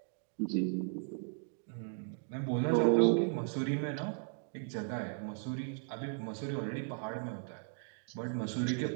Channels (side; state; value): left; silent; 54 dB below the other